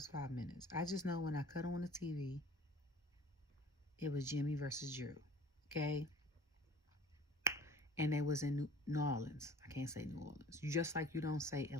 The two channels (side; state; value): both; normal; correlation 0.46